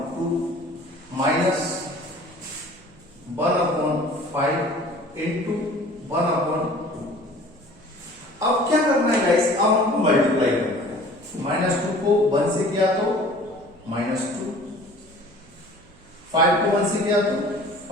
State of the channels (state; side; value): noise; right; hum, 27 dB below the sound